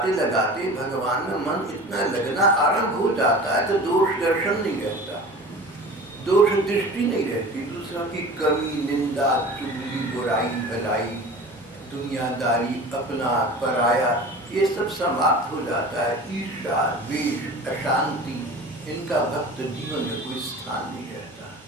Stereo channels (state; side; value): normal; both; correlation 0.38